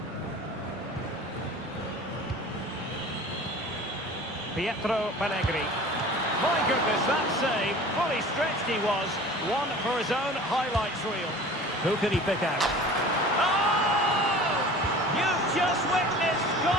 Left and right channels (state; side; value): normal; both; correlation 0.41